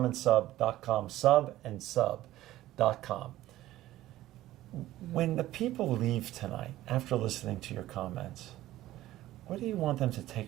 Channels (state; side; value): quieter; left; 15.1 dB